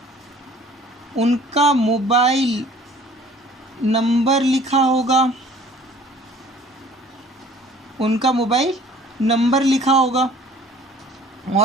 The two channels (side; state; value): both; normal; correlation 0.51